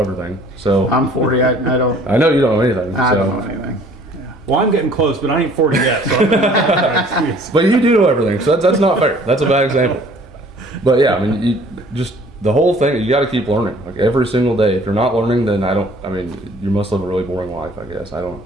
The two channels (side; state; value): both; normal; correlation 0.54